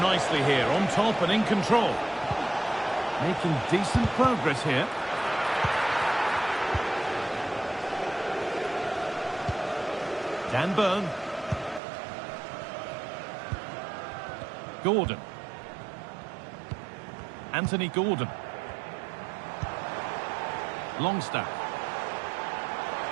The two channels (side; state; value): left; drops out; at 11.8 s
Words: nicely here, on top and in control. Making decent progress here. Dan Burn. Gordon. Anthony Gordon. Longstaff.